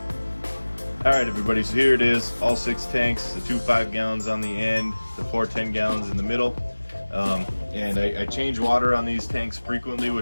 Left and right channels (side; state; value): both; inverted; correlation -1.00